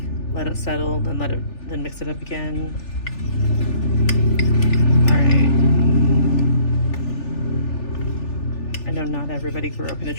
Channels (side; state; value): right; late; 3.4 ms